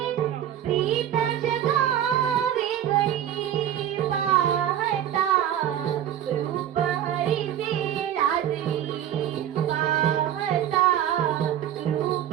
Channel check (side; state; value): left; quieter; 10.7 dB